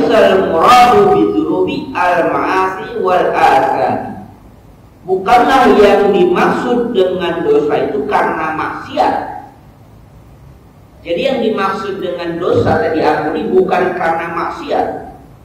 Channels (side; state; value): both; identical; correlation 1.00